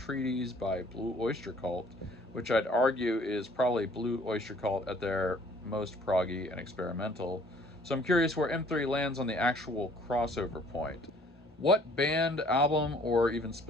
by Blue Oyster Cult, which I'd argue is probably Blue Oyster Cult at their most proggy and experimental. So I'm curious where M3 lands on the actual crossover point. What band, album, or even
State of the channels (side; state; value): both; normal; correlation 0.57